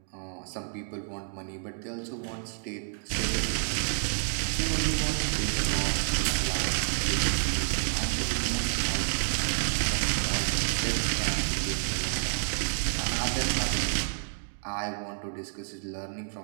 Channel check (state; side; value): silent; left; digital silence